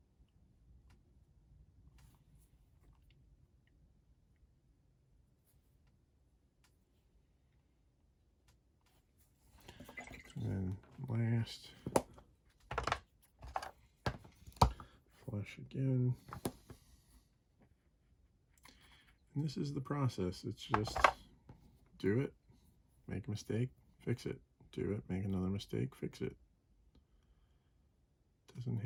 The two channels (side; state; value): both; identical; correlation 1.00